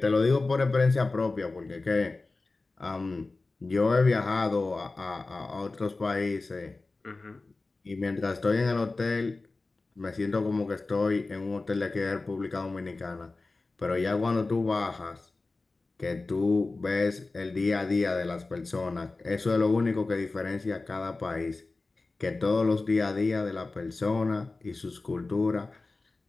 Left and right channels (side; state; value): right; quieter; 3.5 dB